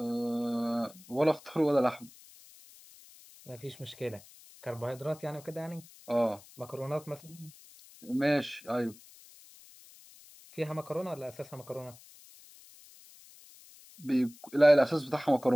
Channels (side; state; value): left; noise; hiss, 22 dB below the sound